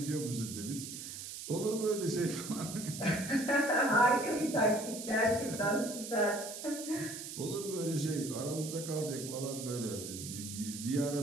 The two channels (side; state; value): right; noise; hiss, 9 dB below the sound